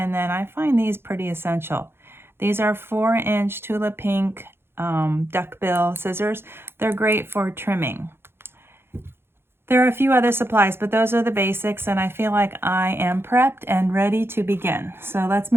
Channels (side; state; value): left; late; 0.11 ms